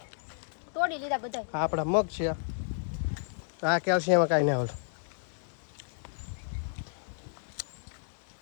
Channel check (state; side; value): silent; right; digital silence